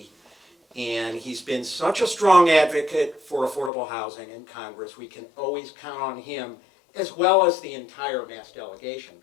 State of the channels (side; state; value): right; drops out; at 3.7 s